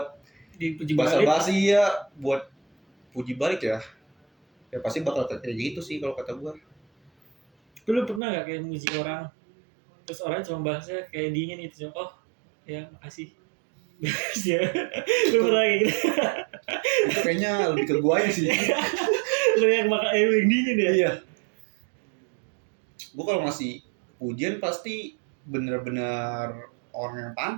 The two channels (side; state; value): left; drops out; at 8.2 s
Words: Dipuji balik. basa-basi ya, buat puji balik ya, ya pasti bakal kayak gitu sih kalau kata gua. Lu pernah nggak kayak muji orang, terus orang cuma bahasnya kayak dingin gitu, oh ya makasih. Ya, lu pernah kayak gitu? Itu kayaknya lebih ke gua aja sih. Lu yang yang dingin ya? Iya. Gua kalau ngasih pujian pasti bener-bener orang yang